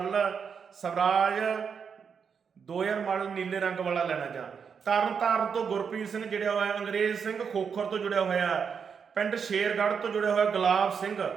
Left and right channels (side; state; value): left; quieter; 6.5 dB